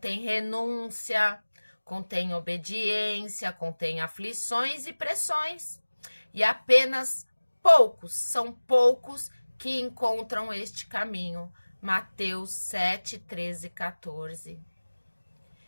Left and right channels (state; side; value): inverted; both; correlation -1.00